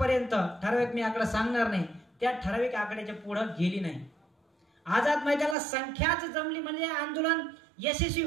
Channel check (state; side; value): drops out; left; at 5.6 s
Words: ठराविक मी आकडा सांगणार नाही, त्या ठराविक आकड्याच्या पुढे गेली नाही। आझाद मैदानाला संख्याच जमली म्हणजे आंदोलन यशस्वी